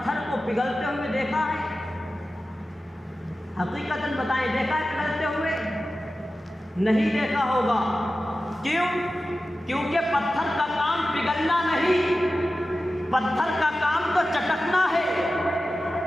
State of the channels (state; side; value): normal; both; correlation 0.94